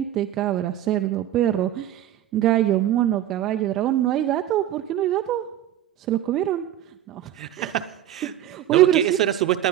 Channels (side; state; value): left; quieter; 12.2 dB